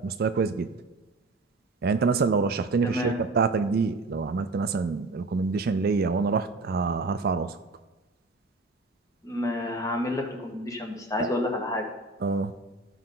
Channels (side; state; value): left; quieter; 3.3 dB